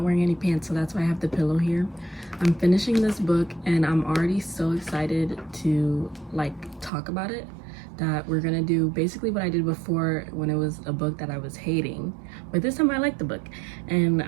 any pants, so that's why I have the pillow here. I'm finishing this book and I'm already so excited to like talk about it that we're gonna do basically what I did before when it was a book that I was hating, but this time I like the book, and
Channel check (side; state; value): left; drops out; at 6.9 s